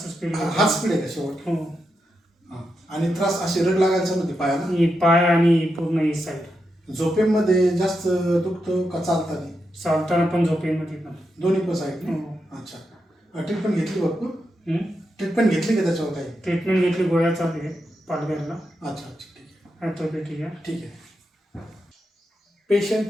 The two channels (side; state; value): both; normal; correlation 0.86